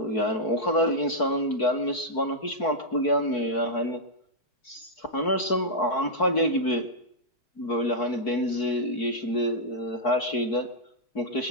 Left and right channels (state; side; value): late; right; 4.6 ms